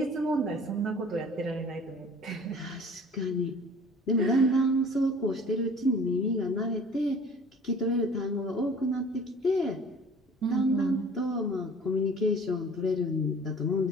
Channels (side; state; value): both; normal; correlation 0.47